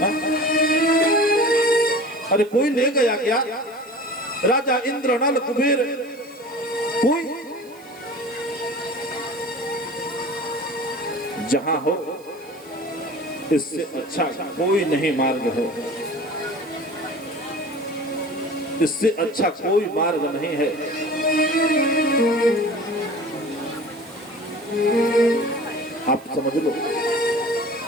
अरे कोई ले गया क्या? राजा इंद्र, नल, कुबेर, कोई? जहां हो इससे अच्छा कोई नहीं मार्ग है, इससे अच्छा कोई मार्ग नहीं है। आप समझ लो,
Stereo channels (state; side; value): noise; right; hiss, 26 dB below the sound